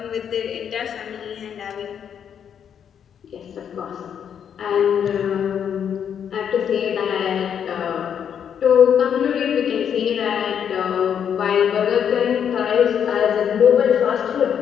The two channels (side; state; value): right; quieter; 8.3 dB